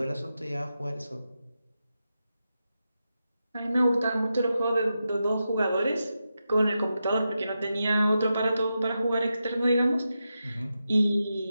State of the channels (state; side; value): inverted; both; correlation -0.88